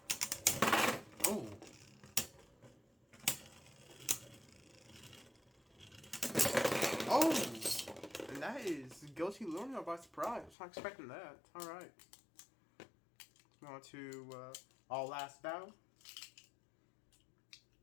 Oh. Oh! And that is Guilty Luinor by surprise. I was not expecting that. Alright. On to our last battle.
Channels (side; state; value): right; drops out; at 10.6 s